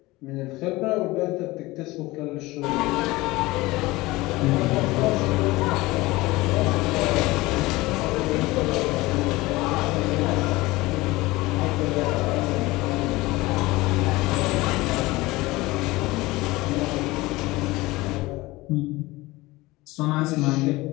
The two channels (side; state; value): right; quieter; 20.5 dB